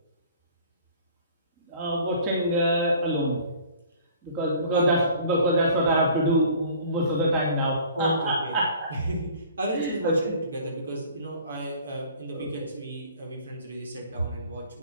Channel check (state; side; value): inverted; both; correlation -0.49